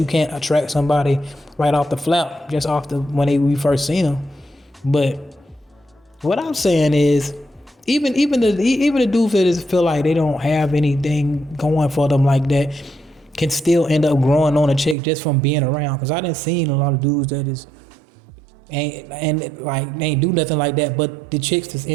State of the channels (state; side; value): drops out; left; at 15.0 s